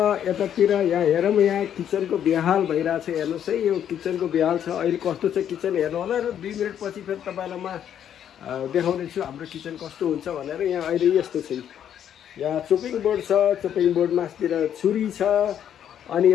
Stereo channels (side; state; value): right; quieter; 9.6 dB